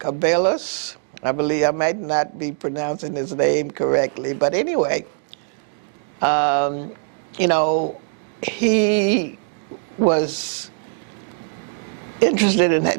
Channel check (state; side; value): silent; left; 64 dB below the other